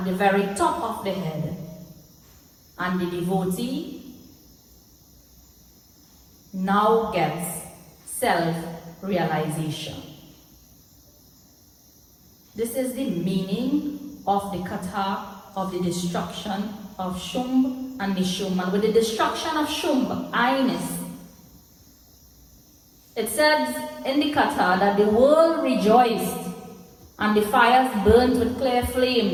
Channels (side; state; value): both; identical; correlation 1.00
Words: the very top of the head. And the devotee now gets self-realization. This is the meaning of the kata of the destruction of Shumb and Nishumb. And with the destruction of Shumb, I-ness, it says in the kata that the world rejoiced and the fires burnt with clear